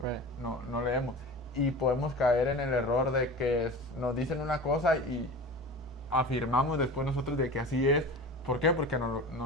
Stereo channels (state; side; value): normal; both; correlation 0.34